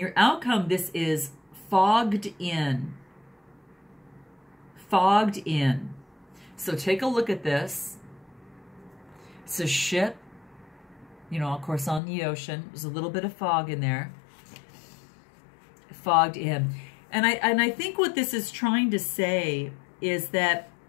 outcome, this is fogged in. Fogged in. So take a look at this. It's a ship, you know, of course, on the ocean. There's a little bit of fog in there. Fogged in. And I think what this is trying to say is that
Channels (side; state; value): right; drops out; at 12.0 s